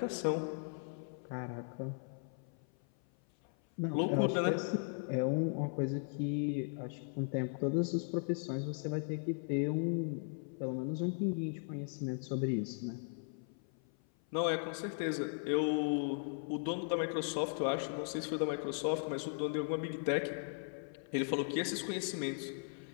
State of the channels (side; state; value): right; silent; 53 dB below the other